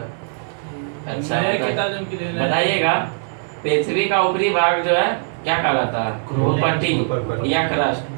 अच्छा, नए किताब की लेना। बताइएगा, पृथ्वी का ऊपरी भाग जो है क्या कहलाता है? भूपट्टी या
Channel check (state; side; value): silent; left; 65 dB below the other